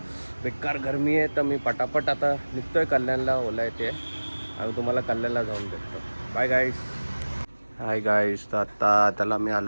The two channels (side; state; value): both; inverted; correlation -1.00